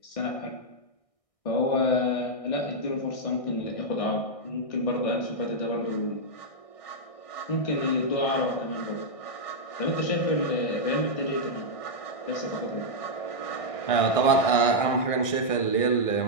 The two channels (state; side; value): late; right; 1.6 ms